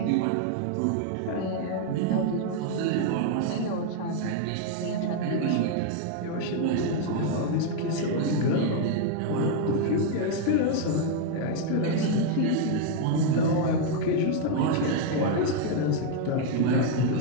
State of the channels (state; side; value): different; both; correlation 0.00